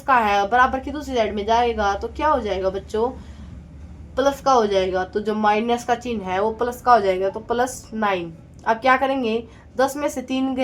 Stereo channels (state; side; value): identical; both; correlation 1.00